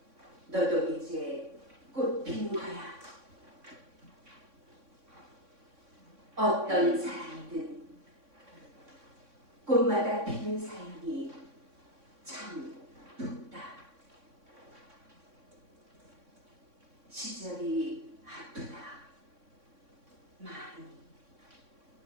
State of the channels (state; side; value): late; left; 3.6 ms